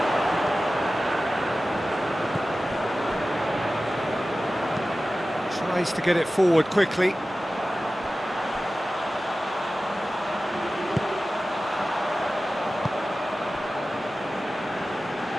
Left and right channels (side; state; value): both; normal; correlation 0.95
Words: Tries to get it forward quickly.